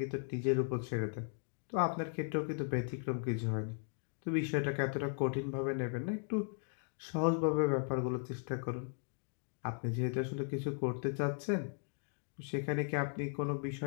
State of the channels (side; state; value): right; silent; 53 dB below the other